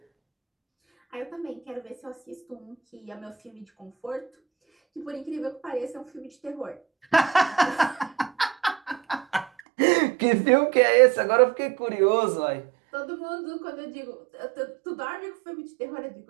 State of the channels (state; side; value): drops out; left; at 9.6 s